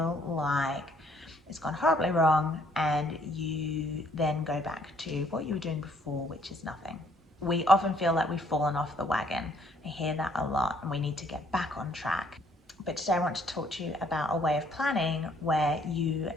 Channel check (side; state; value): both; normal; correlation 0.65